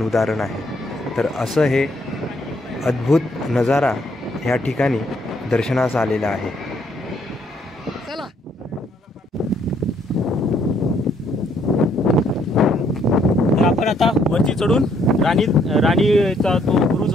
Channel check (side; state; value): both; normal; correlation 0.68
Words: उदाहरण आहे. तर असं हे अद्भुत नजारा ह्या ठिकाणी दर्शनास आलेला आहे. चला तर आपण आता वरती चढून राणीचा तो बुरुज